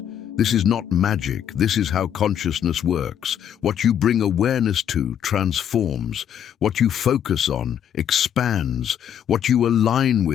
This is not magic. This is how consciousness works. What you bring awareness to transforms. What you focus on expands. What you align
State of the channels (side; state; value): right; quieter; 9.4 dB